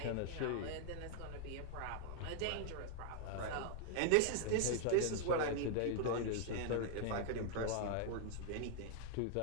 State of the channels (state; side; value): different; both; correlation -0.01